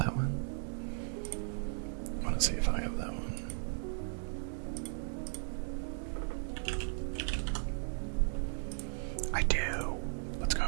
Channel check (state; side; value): silent; left; digital silence